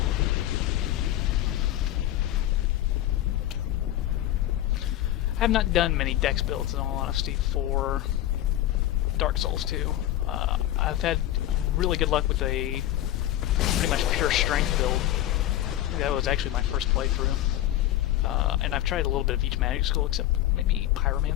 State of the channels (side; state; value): right; quieter; 13.5 dB